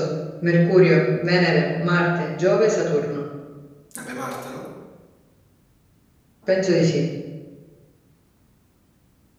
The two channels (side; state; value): both; identical; correlation 1.00